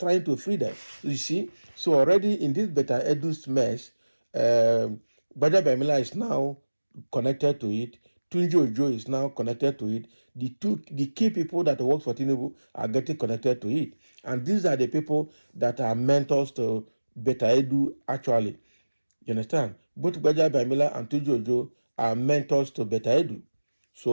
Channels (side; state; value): both; inverted; correlation -1.00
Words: to free them. You see? So already in this Beta Edu's mess, Gbajabiamila is now connected to it. Tunji Ojo is now connected to it. The key people that work for Tinubu are getting connected to it. And these are the people that are mentors to Beta Edu actually. You understand? Both Gbajabiamila and Tunji Ojo are mentors to Beta Edu.